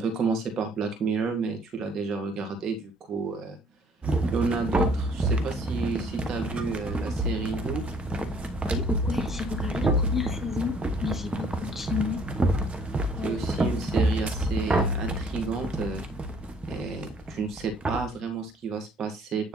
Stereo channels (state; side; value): normal; both; correlation 0.60